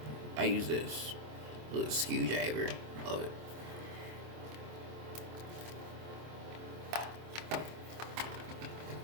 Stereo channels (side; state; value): left; late; 25 ms